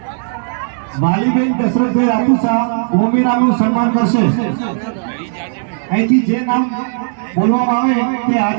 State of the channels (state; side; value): silent; left; 65 dB below the other